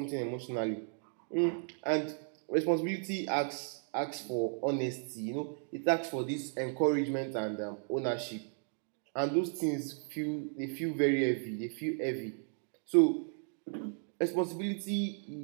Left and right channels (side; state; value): left; silent; 55 dB below the other